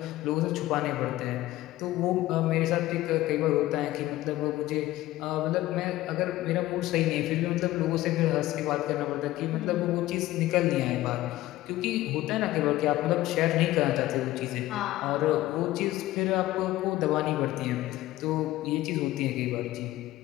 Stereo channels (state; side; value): quieter; right; 16.1 dB